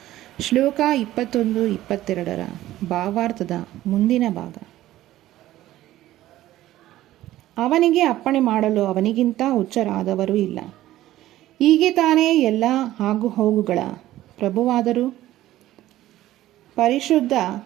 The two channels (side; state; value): left; quieter; 14.7 dB